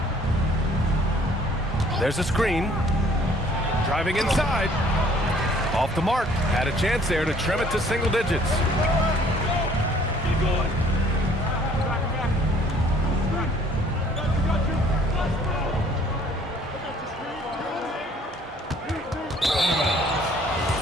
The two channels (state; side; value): normal; both; correlation 0.58